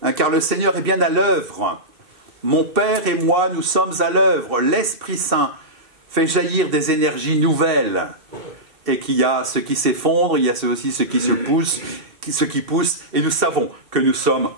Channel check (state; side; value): late; left; 2.7 ms